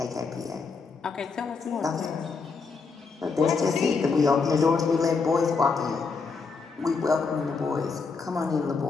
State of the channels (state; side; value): quieter; right; 4.7 dB